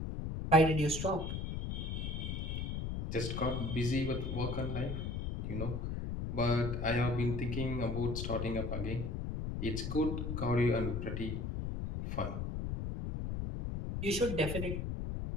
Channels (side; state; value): left; noise; rumble, 3 dB below the sound